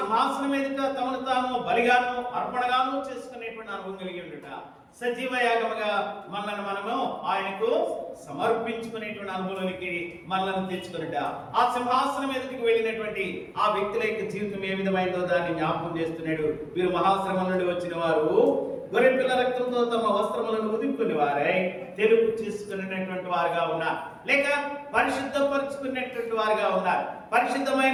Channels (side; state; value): both; identical; correlation 1.00